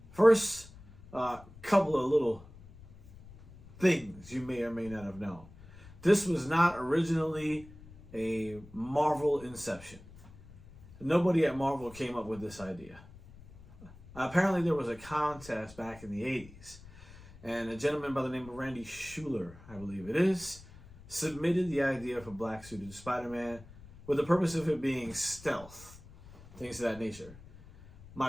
First, couple of little things you may or may not have known. This was not originally a Marvel inception. Nobody at Marvel came up with this idea. Apparently there was a contest back in the 80s, and a gentleman by the name of Randy Schueller, I believe it is, submitted the idea for black suited Spider-Man with the purpose of it being stealth, things of that nature.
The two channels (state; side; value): noise; left; rumble, 20 dB below the sound